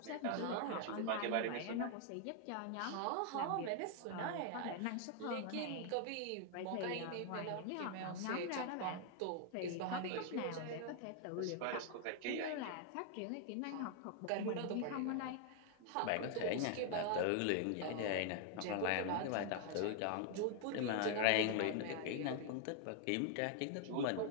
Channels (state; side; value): different; both; correlation 0.00